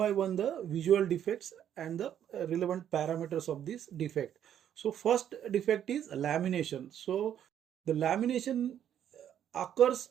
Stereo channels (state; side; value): quieter; left; 10.0 dB